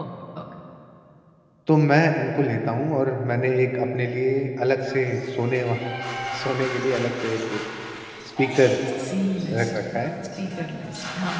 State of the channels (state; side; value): identical; both; correlation 1.00